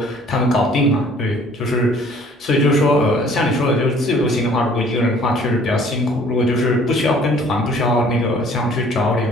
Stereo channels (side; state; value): both; normal; correlation 0.55